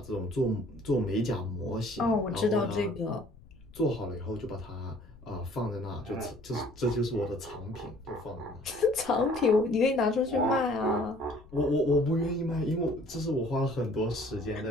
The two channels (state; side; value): noise; left; rumble, 22 dB below the sound